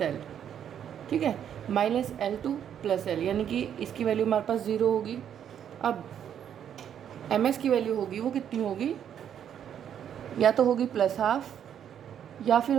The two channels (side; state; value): left; quieter; 9.2 dB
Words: l। ठीक है, -L2 + l, यानी कि इसकी वैल्यू हमारे पास 0 होगी। अब ms की वैल्यू होगी, वो कितनी होगी, या तो होगी +½ या फिर